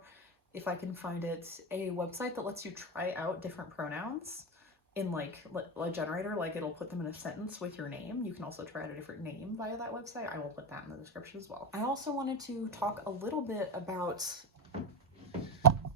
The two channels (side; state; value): both; normal; correlation 0.16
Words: if I can find it, a website that lets you try out different pronouns in like a generator. Like, it'll put them in a sentence with your name. You can also try out a different name via that website. I will put that in the description as well. I also wanted to talk a little bit about